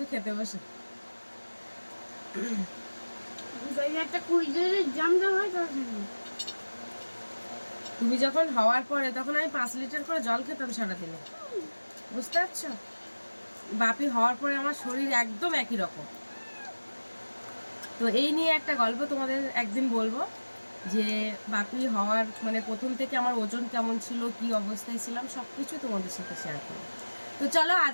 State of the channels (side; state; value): both; inverted; correlation -1.00